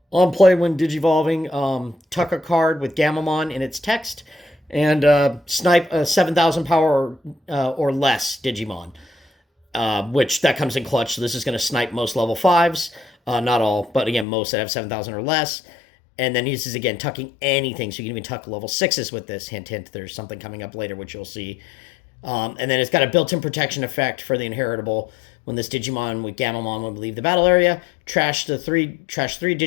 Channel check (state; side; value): drops out; right; at 14.2 s